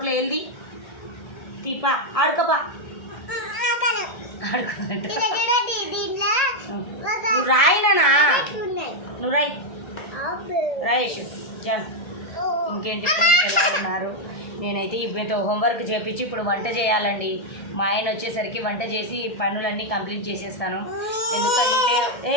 వెళ్ళి తీపా ఆడుకోపా. నువ్వు రాయినా, నువ్వు రాయేషు జాన్. ఇంకేంటి ఫ్రెండ్స్, ఎలా ఉన్నారు? నేనైతే ఇప్పుడైతే హోంవర్క్ చేపించి ఇప్పుడు వంట చేయాలండి. మా ఆయన వచ్చేసరికి వంట చేసి పనులన్నీ కంప్లీట్ చేసేస్తాను. ఎందుకంటే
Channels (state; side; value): late; right; 1.6 ms